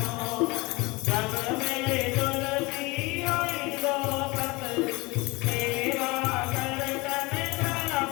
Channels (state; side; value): quieter; right; 24.1 dB